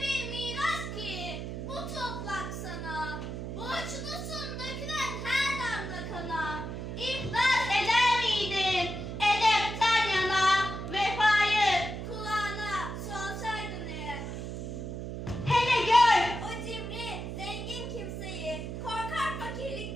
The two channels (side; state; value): right; noise; hum, 6 dB below the sound